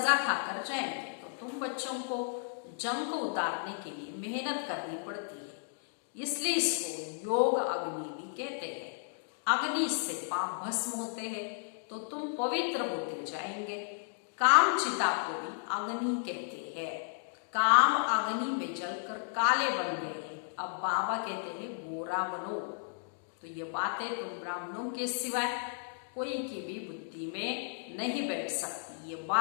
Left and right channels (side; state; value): right; silent; digital silence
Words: खाकर जाएंगे। तो तुम बच्चों को जंग को उतारने के लिए मेहनत करनी पड़ती है, इसलिए इसको योग अग्नि भी कहते हैं। अग्नि से पाप भस्म होते हैं तो तुम पवित्र होते जाएंगे। काम चिता को भी अग्नि कहते हैं। काम अग्नि में जलकर काले बन गए हैं, अब बाबा कहते हैं गोरा बनो। तो ये बातें तुम ब्राह्मणों के सिवाय कोई की भी बुद्धि में नहीं बैठ सकती, ये